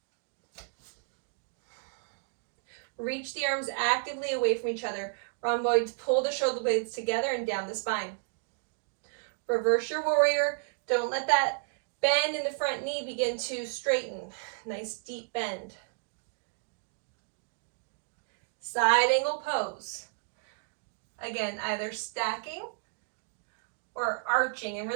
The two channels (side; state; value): left; silent; digital silence